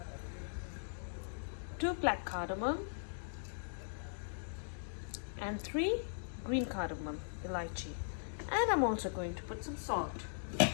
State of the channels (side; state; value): right; silent; digital silence